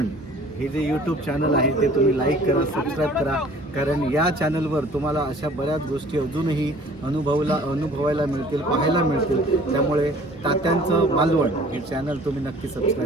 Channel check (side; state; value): both; normal; correlation 0.51